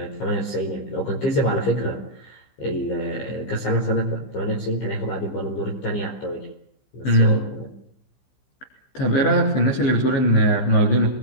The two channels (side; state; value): right; late; 15 ms